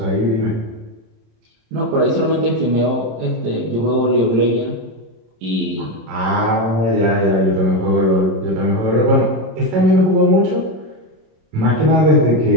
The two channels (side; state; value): left; late; 26 ms